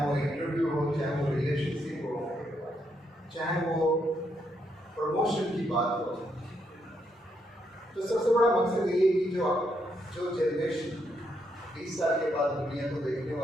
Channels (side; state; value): both; normal; correlation 0.77